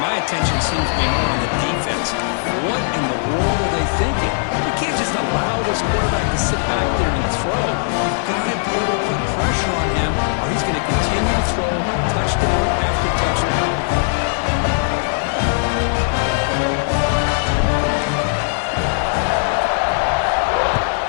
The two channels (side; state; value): right; silent; 67 dB below the other